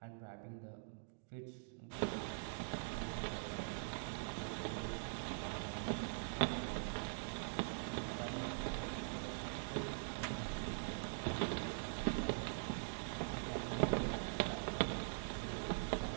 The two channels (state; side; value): silent; left; digital silence